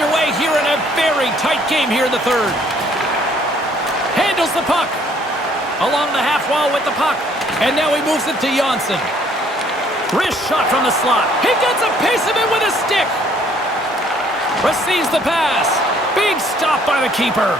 here in a very tight game here in the third. Handles the puck. Along the half wall with the puck. And now he moves it to Jonsson. Wrist shot from the slot. He gets a piece of it with a stick. Receives the pass. Big stop by the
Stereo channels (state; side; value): normal; both; correlation 0.62